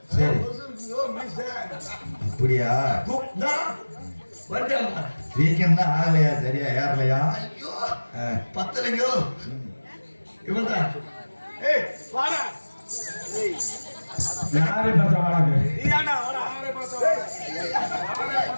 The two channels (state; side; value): inverted; both; correlation -1.00